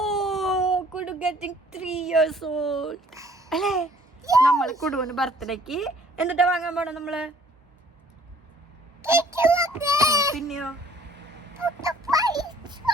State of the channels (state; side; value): normal; both; correlation 0.57